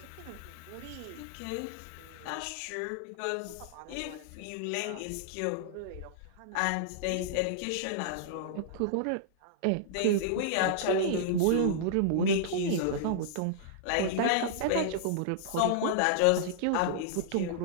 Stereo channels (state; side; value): different; both; correlation -0.02